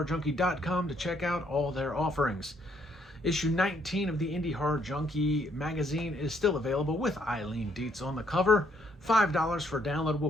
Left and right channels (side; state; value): both; normal; correlation 0.70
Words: to check out all their offerings. Issue 19 of the Indie Horror Junkie magazine is still available with Eileen Dietz on the cover. $5 for a